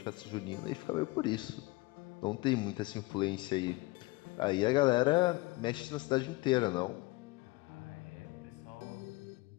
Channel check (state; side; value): quieter; right; 22.1 dB